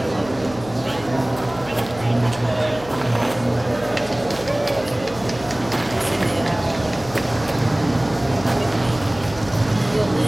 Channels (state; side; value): noise; left; hum, 16 dB below the sound